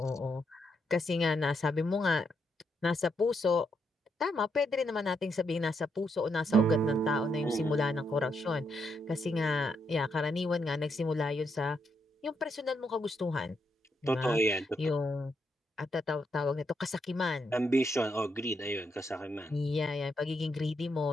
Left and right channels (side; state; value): both; normal; correlation 0.79